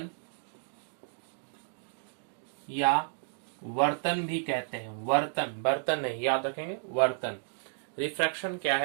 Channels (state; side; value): silent; left; digital silence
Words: या वर्तन भी कहते हैं। वर्तन, बर्तन नहीं, याद रखेंगे, वर्तन। रिफ्रैक्शन क्या